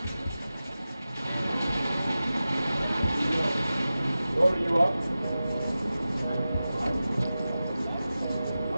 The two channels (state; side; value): inverted; both; correlation -0.94